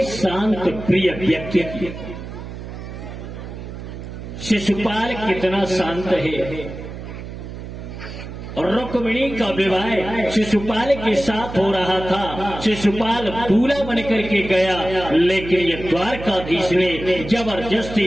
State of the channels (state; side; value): noise; right; hum, 10 dB below the sound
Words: शांत प्रिय व्यक्ति की। शिशुपाल कितना शांत है, और रुक्मिणी का विवाह शिशुपाल के साथ हो रहा था। शिशुपाल दूल्हा बन करके गया, लेकिन ये द्वारकाधीश ने